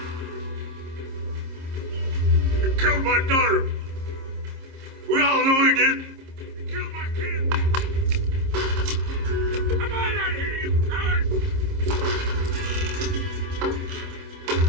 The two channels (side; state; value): left; late; 26 ms